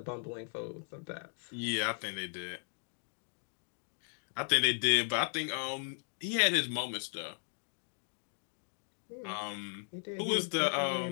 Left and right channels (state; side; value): silent; right; 53 dB below the other